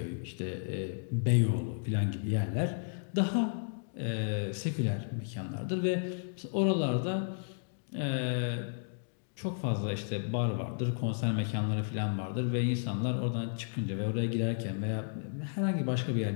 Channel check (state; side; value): silent; right; digital silence